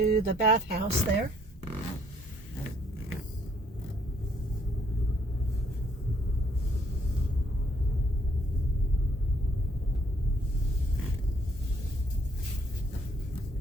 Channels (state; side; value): normal; both; correlation 0.66